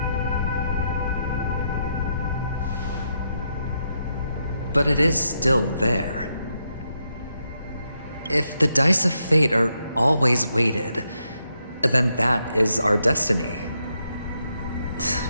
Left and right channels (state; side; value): inverted; both; correlation -0.81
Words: But it is still there. If the dice of fate are always weighted, then that is our destiny.